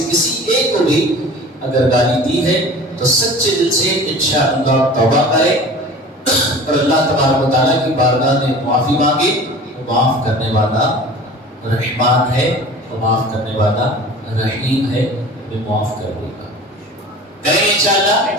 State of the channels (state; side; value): normal; both; correlation 0.40